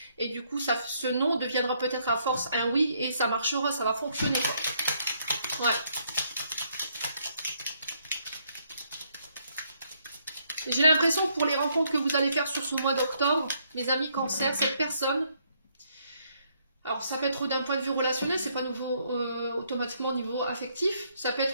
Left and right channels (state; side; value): inverted; both; correlation -0.71